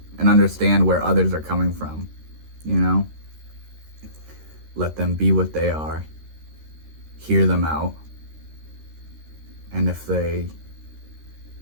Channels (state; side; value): late; left; 13 ms